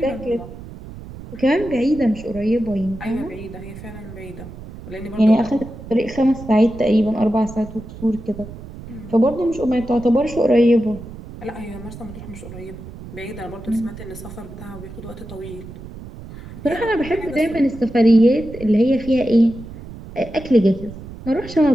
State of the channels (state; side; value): noise; right; rumble, 14 dB below the sound